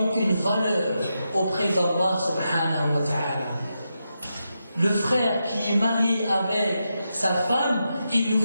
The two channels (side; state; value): both; inverted; correlation -0.86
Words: une valeur auprès d'Allah subhanahu wa ta'ala. Le frère qui est marié avec sa femme, il ne